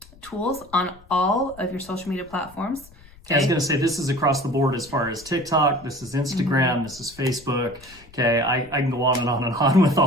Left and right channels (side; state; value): left; noise; rumble, 24 dB below the sound